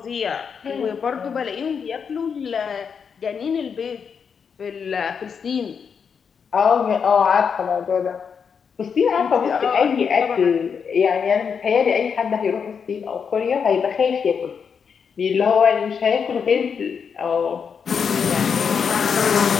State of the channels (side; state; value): right; quieter; 6.5 dB